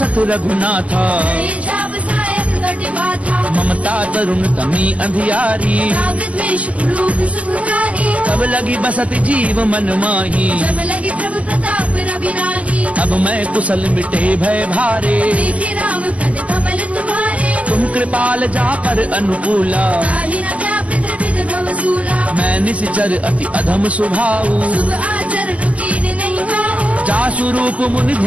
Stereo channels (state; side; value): late; left; 0.069 ms